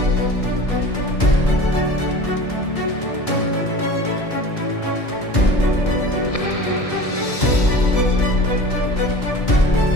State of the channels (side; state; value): right; late; 1.7 ms